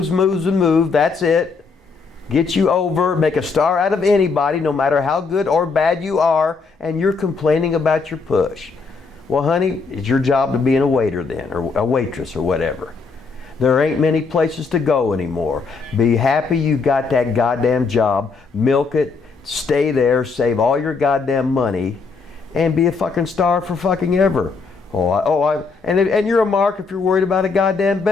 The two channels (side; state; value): right; quieter; 4.6 dB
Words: and move. That's it. Get you over, make a star out of anybody, no matter how good or bad you are, and you're complaining about your push. Well, honey, it's your job to be a waiter then, or a waitress or whatever. There ain't many places to go anymore. Be happy you got that goddamn job, milk it, stay there, save all your goddamn money, and be a fucking star for fucking ever. And you're a mark if you're worried about a goddamn